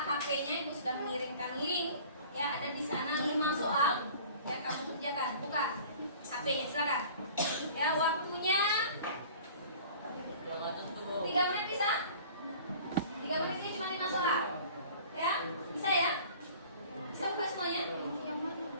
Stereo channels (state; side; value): inverted; both; correlation -0.46